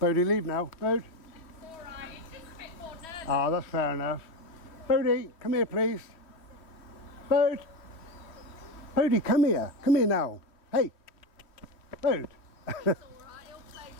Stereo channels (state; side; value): late; right; 3.1 ms